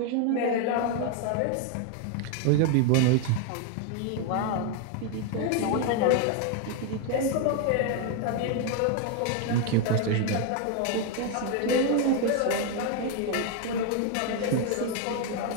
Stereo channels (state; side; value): different; both; correlation 0.01